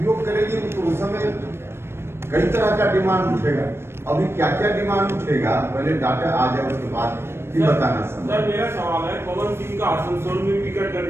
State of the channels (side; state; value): left; late; 0.12 ms